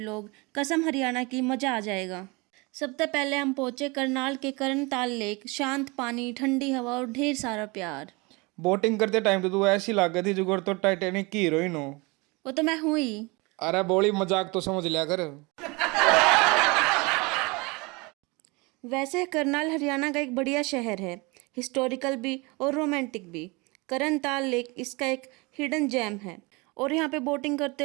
कसम हरियाणा की, मजा आ जाएगा। सबसे पहले हम पहुंचे करनाल के करनताल लेक। शांत पानी, ठंडी हवा और ढेर सारा प्यार। बोटिंग करते टाइम तो तू ऐसी लग गई थी जुगर तो टाइटैनिक की हीरोइन हो। वो तो मैं हुई। अरे बोली मजाक तो समझ लिया कर। वैसे करनाल हरियाणा का एक बढ़िया शहर है, हिस्टोरिकल भी और रोमांटिक भी। करनताल लेक इसका एक हिडन जेम है और यहाँ पे बोटिंग करते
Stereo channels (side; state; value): left; quieter; 26.7 dB